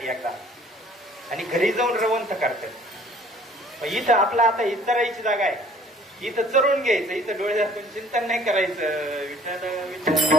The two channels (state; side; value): normal; both; correlation 0.55